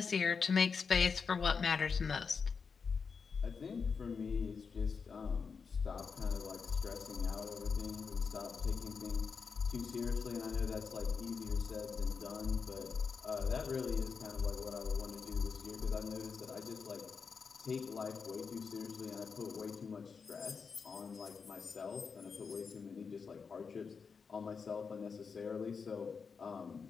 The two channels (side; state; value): right; quieter; 5.6 dB